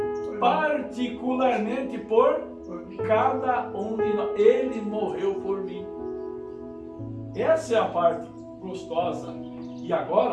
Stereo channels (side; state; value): both; identical; correlation 1.00